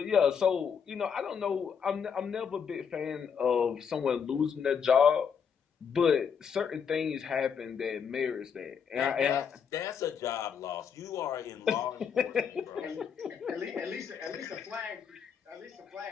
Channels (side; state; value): right; quieter; 6.9 dB